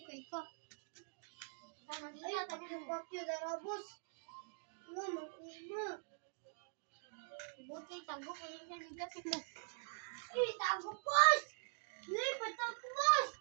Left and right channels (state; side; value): silent; left; digital silence